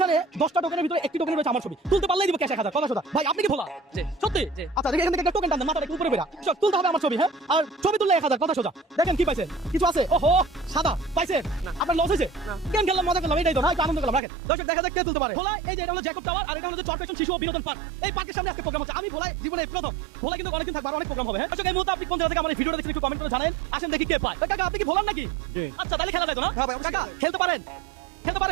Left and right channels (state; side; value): drops out; left; at 14.2 s